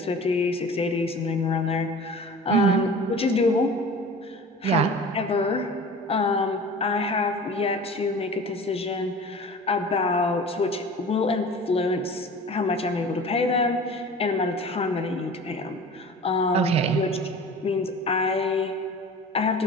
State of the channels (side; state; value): both; normal; correlation 0.39